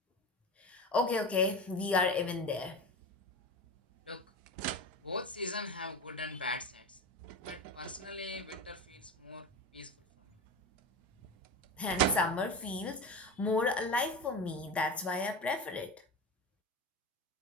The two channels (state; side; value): normal; both; correlation 0.25